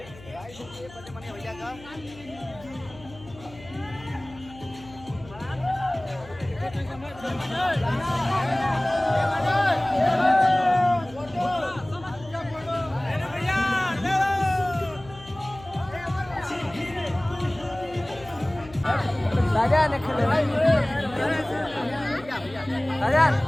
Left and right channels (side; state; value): left; noise; hum, 19 dB below the sound